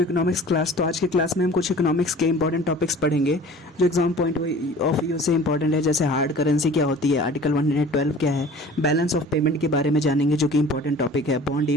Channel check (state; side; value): normal; both; correlation 0.45